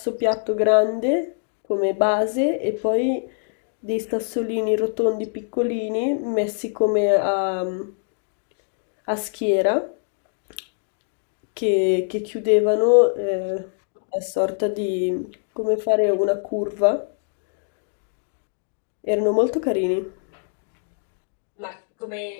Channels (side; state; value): right; silent; digital silence